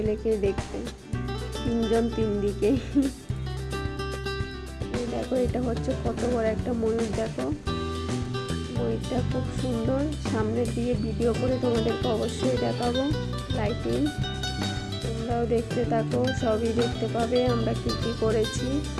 দেখতে, তিনজন তিন দিকে। দেখো এটা হচ্ছে কত বড় একটা ময়ূর। দেখো ময়ূরটা খুব সুন্দর, সামনে দিয়ে ভিডিও করে তোমাদেরকে অবশ্যই দেখাবো। লাইটিং তোমরাও দেখতে থাকো, সবই দেখতে পাবে আমরা কি কি করেছি।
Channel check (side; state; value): both; identical; correlation 1.00